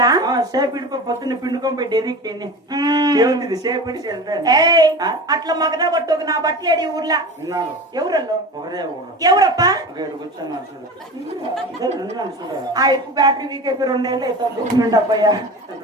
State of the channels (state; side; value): normal; both; correlation 0.32